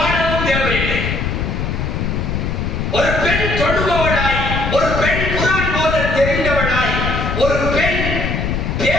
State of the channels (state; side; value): noise; left; rumble, 1 dB below the sound